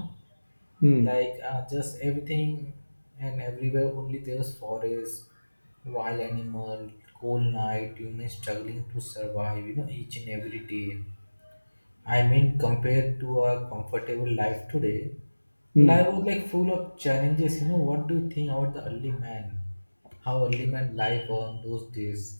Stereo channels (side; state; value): both; inverted; correlation -1.00